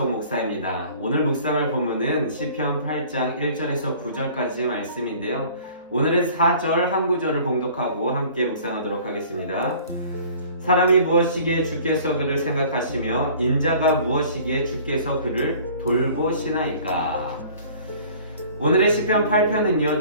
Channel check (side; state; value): both; inverted; correlation -0.49